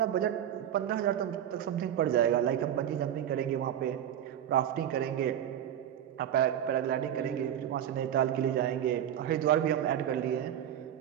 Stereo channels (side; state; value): left; quieter; 10.5 dB